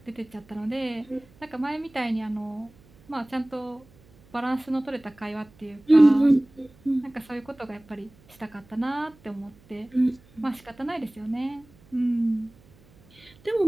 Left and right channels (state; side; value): noise; right; hum, 28 dB below the sound